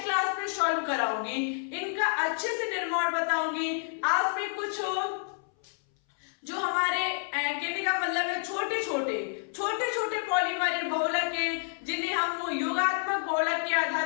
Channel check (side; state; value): right; silent; 58 dB below the other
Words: क्लास में सॉल्व कराऊंगी, इनका अच्छे से निर्माण बताऊंगी। आज में कुछ जो हमारे कहने का मतलब है छोटे छोटे पॉलीमर बहुलक हैं, जिन्हें हम योगात्मक बहुलक के